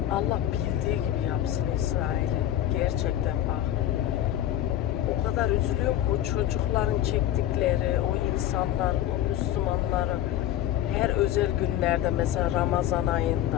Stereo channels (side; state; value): right; quieter; 12.0 dB